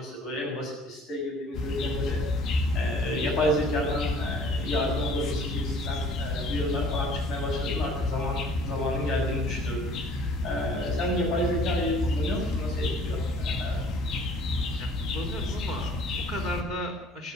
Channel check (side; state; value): both; normal; correlation 0.53